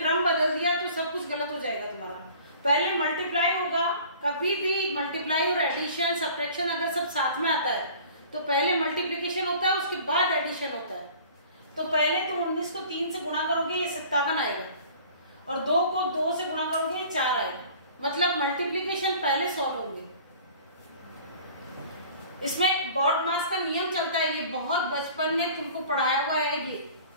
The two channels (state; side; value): inverted; both; correlation -0.47